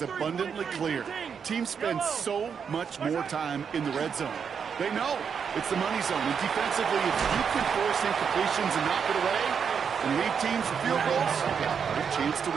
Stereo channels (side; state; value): left; quieter; 6.8 dB